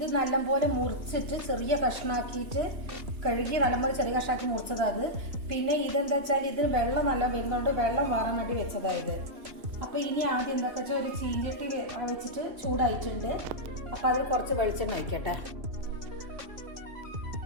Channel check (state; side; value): late; left; 3.1 ms